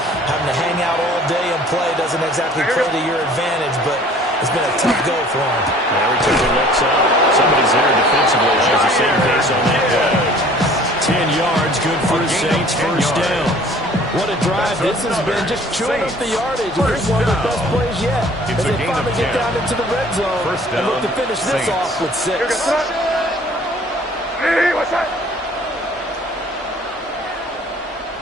having to hang out all day and play doesn't exactly play to your advantage, but it's been a tough go for him. Every time he looks up, somebody's there defensively. Shows the same pace on that play. 10 yards, good for the Saints, first down. What a drive this has been, just chewing up the yardage. And this is one of their best plays yet. As they finally get down into the red zone and look to finish this off with 6.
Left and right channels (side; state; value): both; normal; correlation 0.52